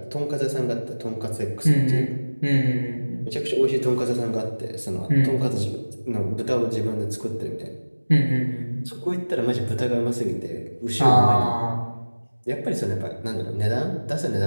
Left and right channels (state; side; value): inverted; both; correlation -1.00